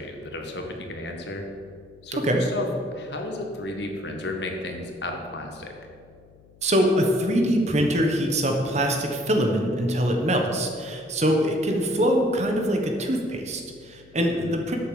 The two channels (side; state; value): left; noise; hum, 27 dB below the sound